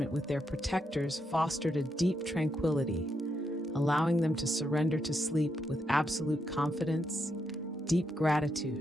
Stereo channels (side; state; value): both; normal; correlation 0.81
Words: with their protectors fostered a deep tranquility, allowing them to surrender to sleep with absolute confidence, deep